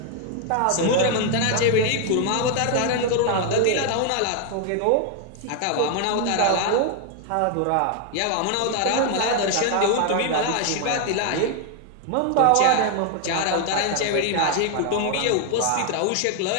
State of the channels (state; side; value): different; both; correlation 0.00